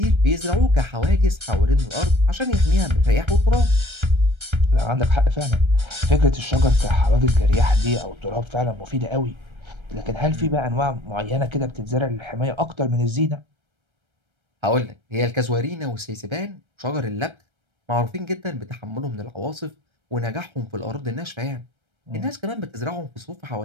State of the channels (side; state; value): left; late; 1.3 ms